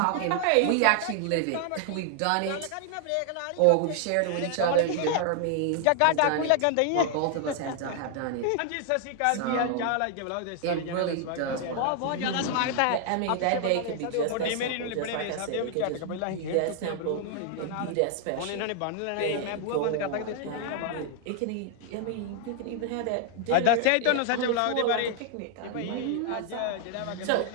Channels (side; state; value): both; different; correlation 0.00